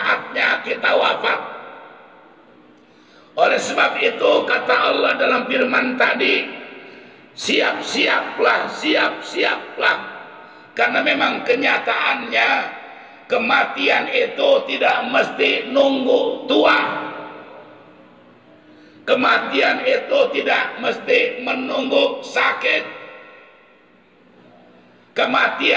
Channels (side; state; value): both; identical; correlation 1.00